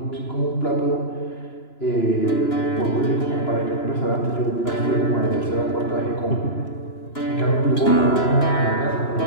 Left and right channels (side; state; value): right; late; 2.9 ms